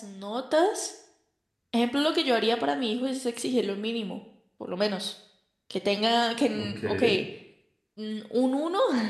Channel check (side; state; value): both; identical; correlation 1.00